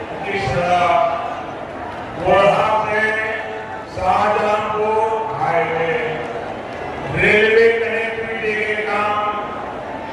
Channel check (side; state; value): both; identical; correlation 1.00